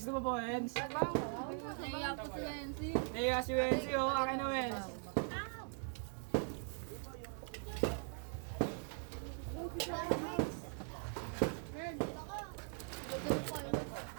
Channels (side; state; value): left; silent; 50 dB below the other